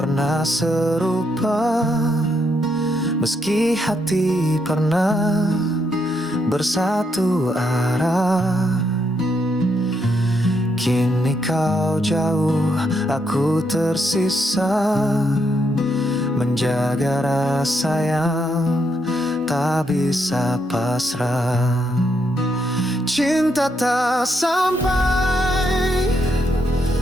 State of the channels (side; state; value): both; normal; correlation 0.77